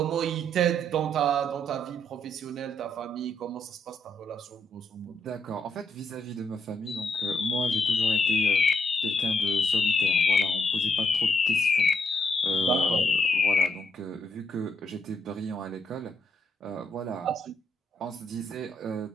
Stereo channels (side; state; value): both; normal; correlation 0.75